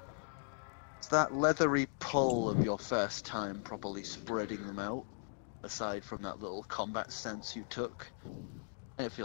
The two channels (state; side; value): silent; right; digital silence